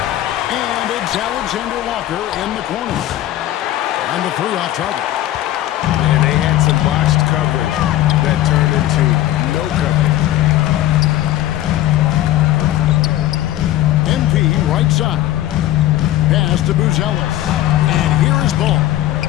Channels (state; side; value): quieter; right; 14.0 dB